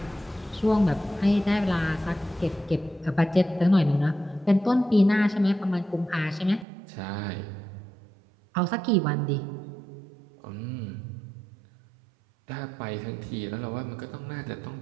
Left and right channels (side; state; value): left; drops out; at 6.7 s